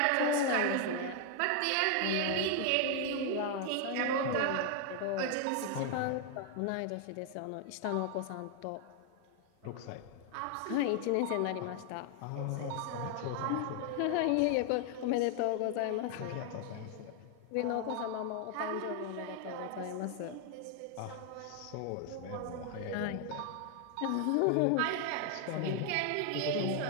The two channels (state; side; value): different; both; correlation 0.00